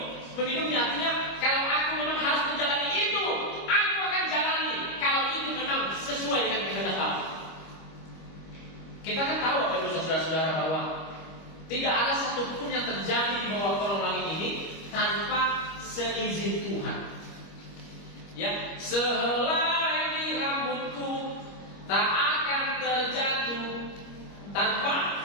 meminumnya, artinya kalau aku memang harus menjalani itu, aku akan jalani. Kalau itu memang sesuai dengan kehendak Allah. Kita kan tahu Bapak Ibu Saudara-saudara bahwa tidak ada satupun yang terjadi di bawah kolong langit ini tanpa seizin Tuhan. Ya, sehelai di rambutku tak akan terjatuh tanpa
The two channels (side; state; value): right; late; 25 ms